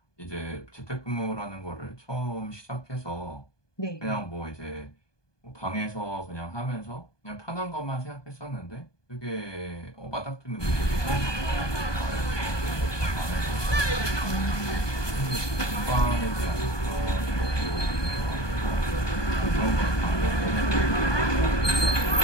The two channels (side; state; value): right; late; 1.2 ms